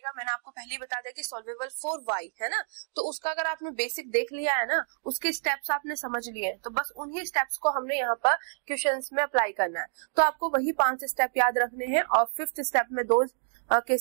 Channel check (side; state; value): left; silent; digital silence